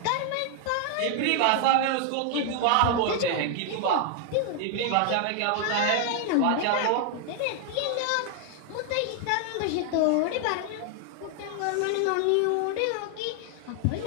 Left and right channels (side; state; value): both; different; correlation 0.00